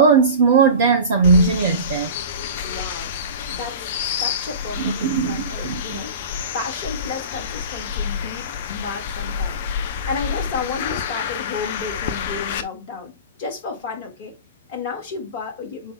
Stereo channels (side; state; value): both; inverted; correlation -0.34